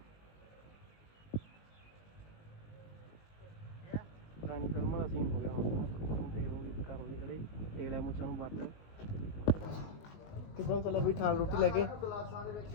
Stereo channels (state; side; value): late; right; 19 ms